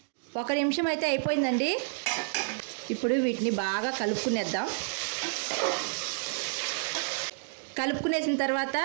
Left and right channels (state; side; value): silent; left; digital silence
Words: 1 నిమిషం అయితే అయిపోయిందండి. ఇప్పుడు వీటిని బాగా కలుపుకునేద్దాం. కలుపుకునేసిన తర్వాత